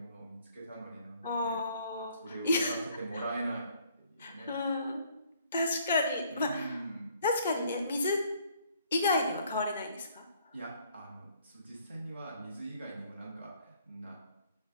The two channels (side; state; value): both; inverted; correlation -0.62